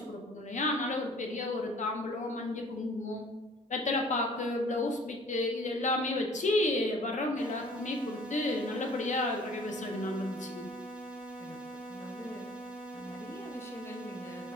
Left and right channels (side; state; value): both; normal; correlation 0.52